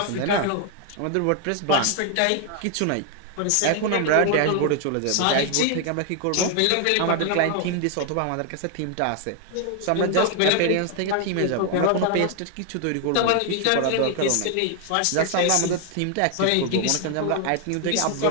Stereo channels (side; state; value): both; different; correlation 0.00